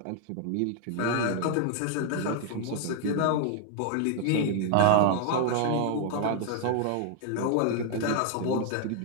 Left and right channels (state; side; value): different; both; correlation 0.00